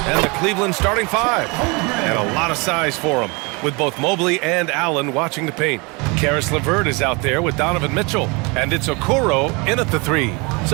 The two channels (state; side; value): quieter; left; 28.6 dB